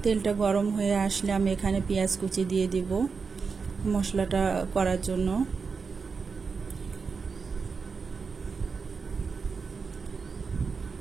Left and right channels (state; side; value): quieter; left; 5.1 dB